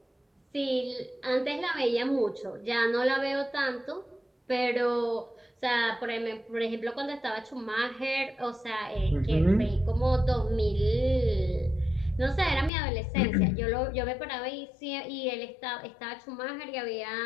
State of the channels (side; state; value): right; drops out; at 12.7 s